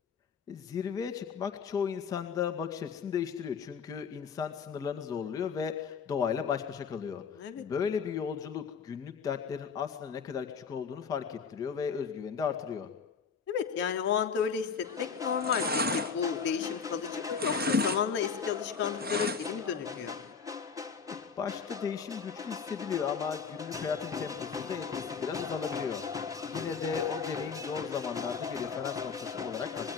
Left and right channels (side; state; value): right; quieter; 6.0 dB